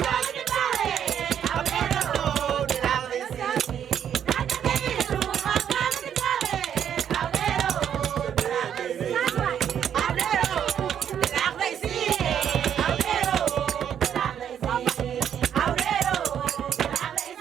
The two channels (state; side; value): quieter; left; 9.1 dB